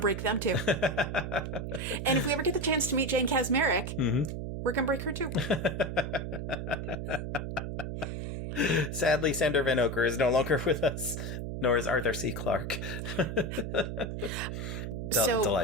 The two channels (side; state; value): right; noise; hum, 5 dB below the sound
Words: them too. And if we ever get the chance to meet Jane Kasmerick, we're going to break her too. Sadly, Sander Van Oker is no longer with us, nor is Arthur C. Clarke.